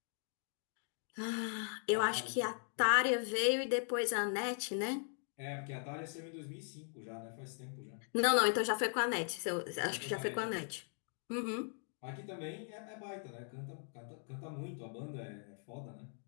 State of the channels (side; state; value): right; silent; 52 dB below the other